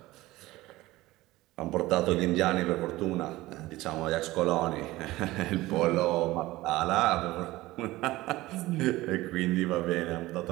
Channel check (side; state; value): left; quieter; 18.2 dB